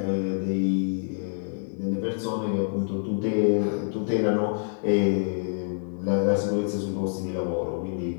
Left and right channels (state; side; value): silent; right; 60 dB below the other